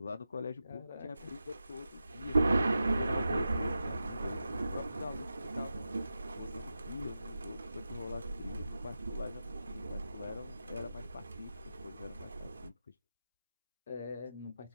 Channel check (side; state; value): both; inverted; correlation -0.91